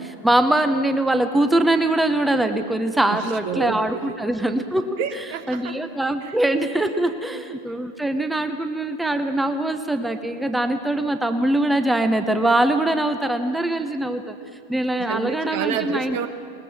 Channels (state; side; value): normal; both; correlation 0.80